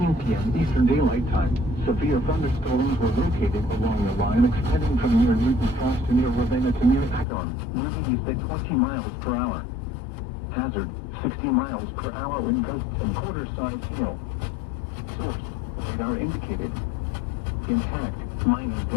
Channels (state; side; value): drops out; right; at 7.2 s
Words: p.m. Eastern Daylight Time, severe thunderstorms were located along the line extending from near Newton Falls to near Ravenna to near Akron, moving east at 20 miles per hour. Hazard, 60 miles per hour wind gusts and quarter-sized hail. Source, radar indicated. Intact, minor